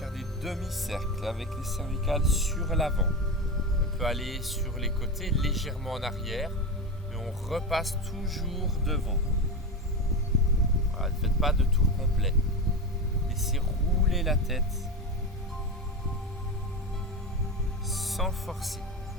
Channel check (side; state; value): both; normal; correlation 0.20